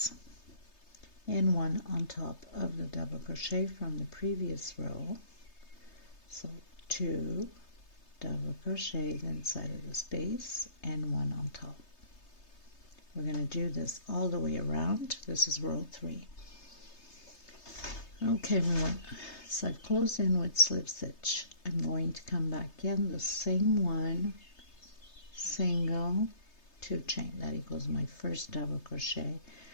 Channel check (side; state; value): right; late; 3.3 ms